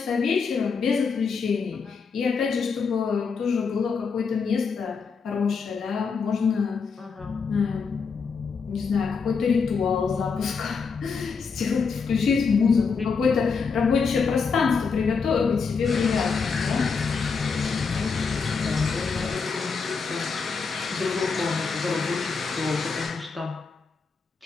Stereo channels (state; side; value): quieter; right; 5.3 dB